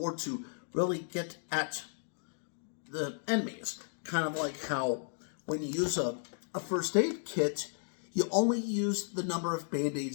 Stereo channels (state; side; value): silent; right; digital silence